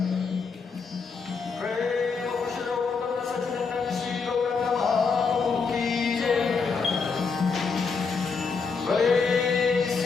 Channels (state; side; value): quieter; right; 5.0 dB